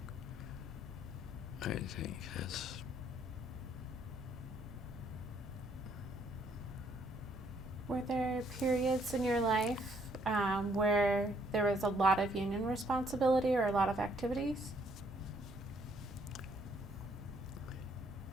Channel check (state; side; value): noise; right; rumble, 18 dB below the sound